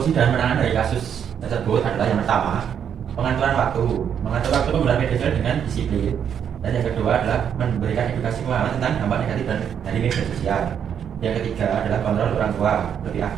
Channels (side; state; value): left; quieter; 8.3 dB